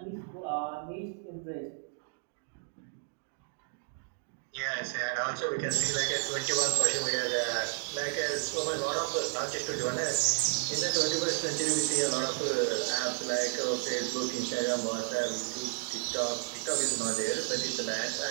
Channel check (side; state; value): left; silent; digital silence